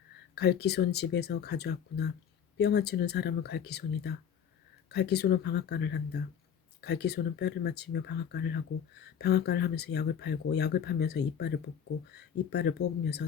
갈기손 집에서 가져왔구나. 뼈 맞추는 사람은 갈기손이다. 갈기손은 방앗간을 한다. 갈기손은 뼈를 맞추며 방앗간을 하고 방앗간을 하면서 약을 팔고 약을 파면서 이빨을 뽑고 이빨을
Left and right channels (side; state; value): right; quieter; 8.4 dB